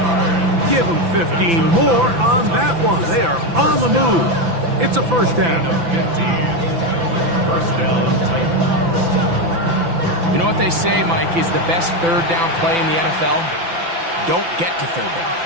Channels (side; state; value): left; late; 5.9 ms